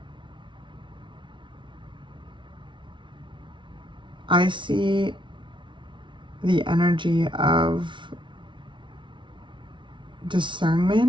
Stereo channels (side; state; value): left; late; 0.24 ms